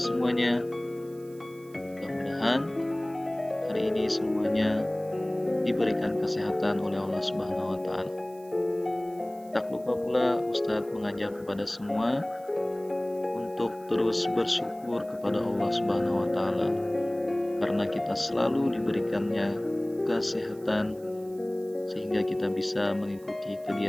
Mudah-mudahan hari ini semuanya diberikan kesehatan oleh Allah Subhanahu wa taala. Tak lupa pula Ustadz mengajak kepada semua untuk terus bersyukur kepada Allah Subhanahu wa taala karena kita selalu diberikannya kesehatan sehingga kita bisa mengikuti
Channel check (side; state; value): right; noise; hiss, 26 dB below the sound